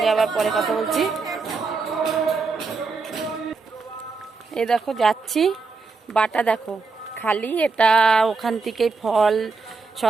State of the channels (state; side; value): quieter; left; 4.3 dB